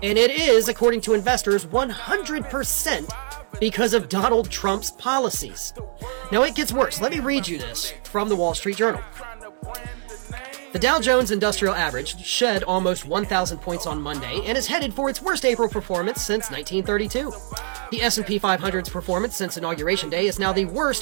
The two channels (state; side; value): silent; left; 63 dB below the other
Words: And it is, according to investors, 100% because of Donald Trump's policies. Now it gets worse. Let me read you this from the Wall Street Journal. The Dow Jones Industrial Average shed almost 1,000 points on Monday and is headed for its worst April performance since 1932. The S&P 500's performance since Inauguration Day is now the